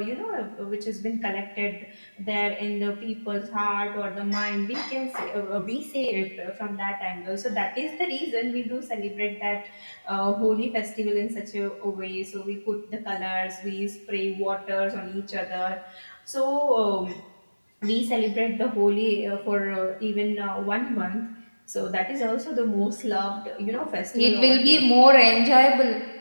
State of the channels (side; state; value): both; inverted; correlation -1.00